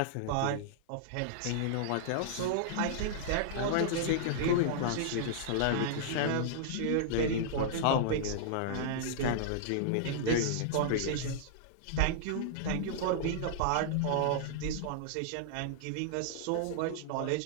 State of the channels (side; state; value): both; different; correlation -0.01